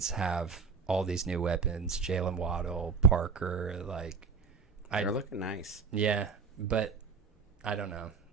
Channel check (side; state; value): left; quieter; 5.2 dB